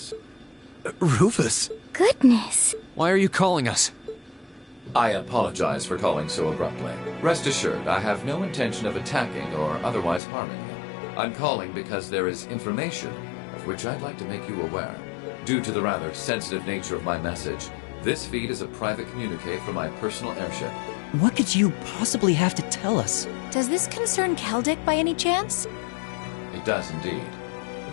Rufus! Goodness. Why are you calling us? I apologize for calling so abruptly. Rest assured, I have no intention of attacking or otherwise harming you. I'm calling because there is information of which I'd like to make you aware. Due to the rather sensitive nature of my message, this feed is a private communique from my personal airship. What could you possibly have to tell us? Does this concern Keldic by any chance? It does indeed.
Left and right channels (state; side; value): drops out; right; at 10.2 s